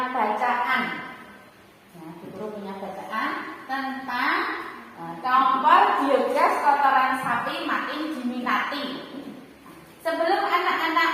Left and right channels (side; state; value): both; identical; correlation 1.00